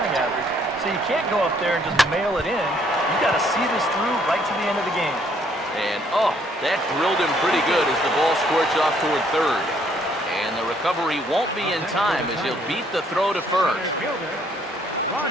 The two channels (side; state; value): both; normal; correlation 0.66